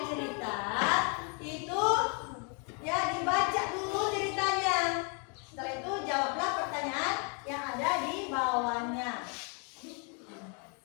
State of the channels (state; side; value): quieter; right; 36.8 dB